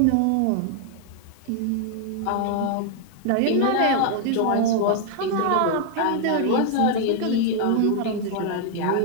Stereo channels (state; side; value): different; both; correlation 0.00